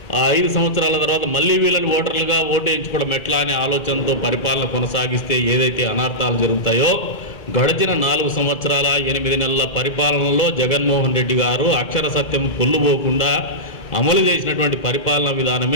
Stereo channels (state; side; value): late; right; 2.0 ms